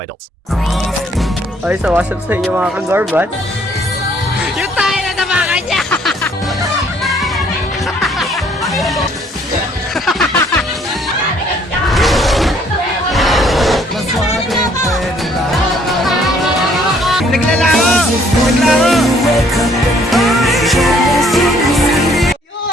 adults. Okay, so what's up sa inyo mga kagorbat? Yung tayo na nabakan niya! Naglalaro!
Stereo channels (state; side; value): normal; both; correlation 0.63